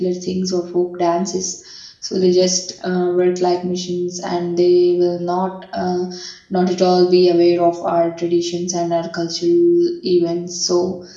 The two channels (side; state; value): both; identical; correlation 1.00